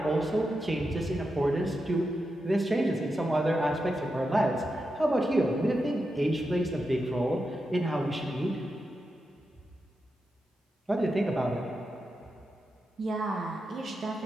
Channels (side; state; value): both; normal; correlation 0.88